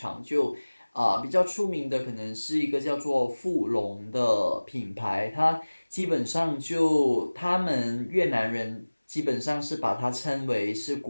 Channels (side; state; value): both; inverted; correlation -1.00